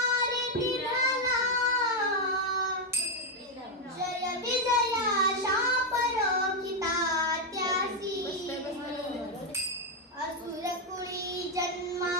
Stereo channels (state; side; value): normal; both; correlation 0.03